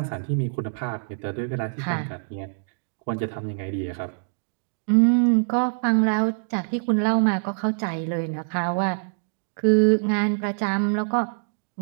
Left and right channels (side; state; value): left; silent; digital silence